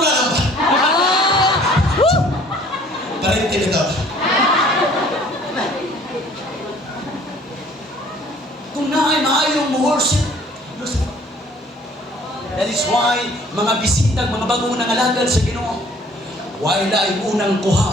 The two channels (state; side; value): normal; both; correlation 0.55